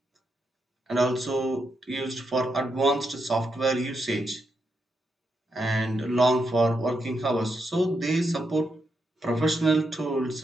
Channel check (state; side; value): normal; both; correlation 0.83